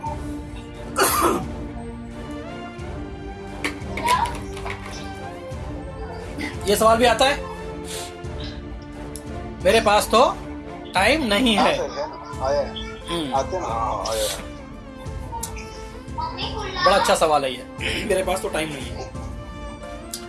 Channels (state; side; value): identical; both; correlation 1.00